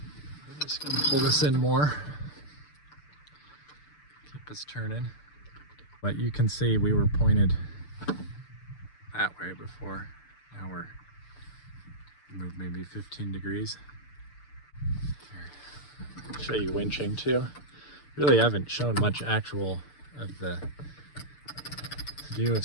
just gonna pull this in more. Keep us turning. But you can see we were pointed that way before. Now we're moved maybe 15 degrees. Here. Show you winching too. Really haven't shown much actual of the view of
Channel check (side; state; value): right; late; 6.8 ms